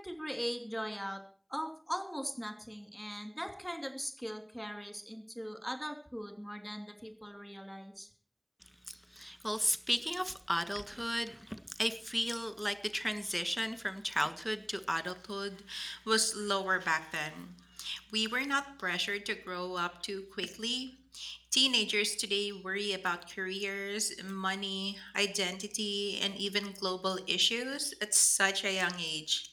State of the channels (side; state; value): both; identical; correlation 1.00